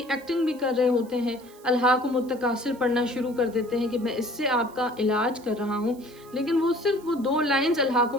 ایکٹنگ بھی کر رہے ہوتے ہیں، الحاق متکاثر پڑھنا شروع کر دیتے ہیں کہ میں اس سے آپ کا علاج کر رہا ہوں، لیکن وہ صرف وہ 2 لائنز الحاق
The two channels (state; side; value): noise; right; hiss, 25 dB below the sound